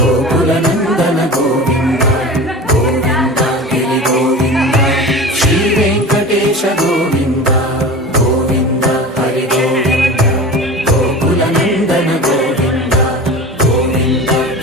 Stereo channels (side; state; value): both; normal; correlation 0.34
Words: नंदन गोविंद गोविंद गिरि गोविंद श्री वेंकटेश गोविंद गोविंद हरि गोविंद गोकुल नंदन गोविंद गोविंद